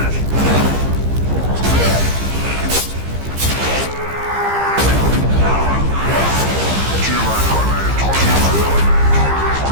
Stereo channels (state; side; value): late; left; 15 ms